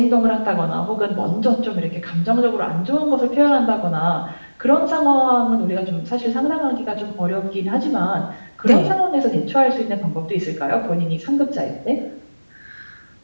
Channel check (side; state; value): both; inverted; correlation -1.00